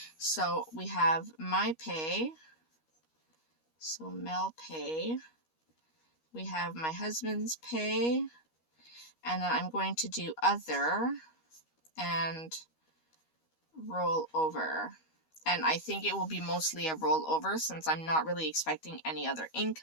So we have my pay, so Mel pay, we have my husband's pay, And then I'm going to do other and roll over. And I think it will be mostly a rollover since I'm not really expecting any other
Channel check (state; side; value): late; right; 13 ms